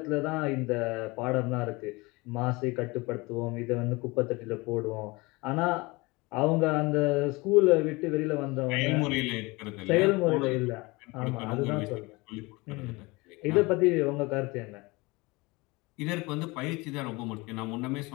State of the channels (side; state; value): right; quieter; 24.2 dB